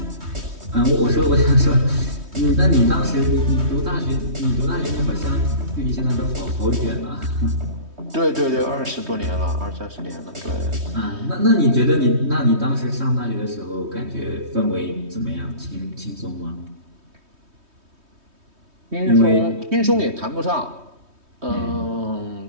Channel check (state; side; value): late; left; 3.2 ms